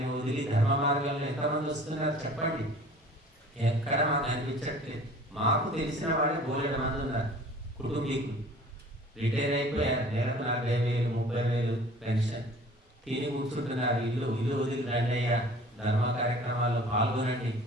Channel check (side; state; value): both; normal; correlation 0.47